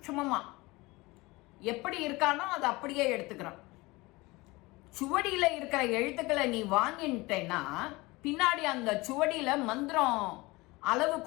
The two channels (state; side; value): quieter; right; 22.5 dB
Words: எப்படி இருக்கானோ அதை அப்படியே எடுத்துக்கிறான். சுவடியில இருக்கிற எழுத்துக்களை நீ வாங்கிட்டேன்னா பின்னாடி அந்த சுவடியில மந்திரம் அளவு